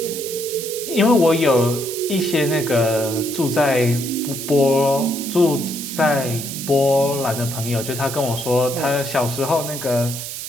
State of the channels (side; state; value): right; noise; hiss, 7 dB below the sound